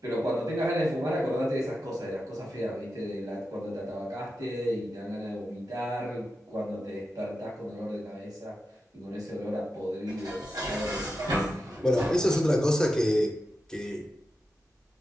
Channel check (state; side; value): normal; both; correlation 0.90